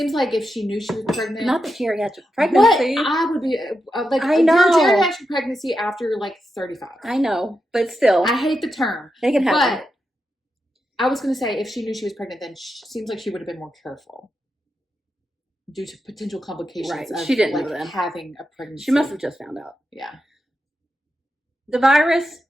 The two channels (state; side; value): normal; both; correlation 0.87